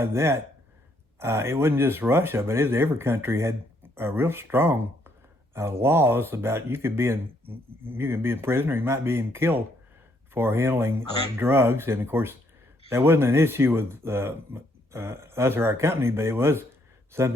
that, it wasn't just Russia, but every country had real strong laws about you can be in prison or you might be even killed for handling drugs. And of course, that wasn't an issue with us or our company, but it was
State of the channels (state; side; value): normal; both; correlation 0.71